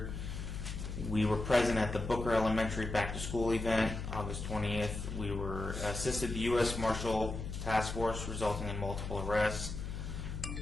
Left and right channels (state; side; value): noise; left; hum, 6 dB below the sound